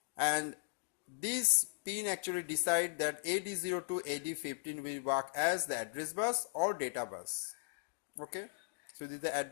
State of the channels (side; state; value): right; silent; digital silence